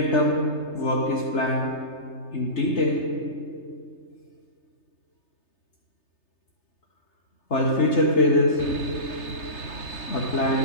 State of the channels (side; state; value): right; late; 3.3 ms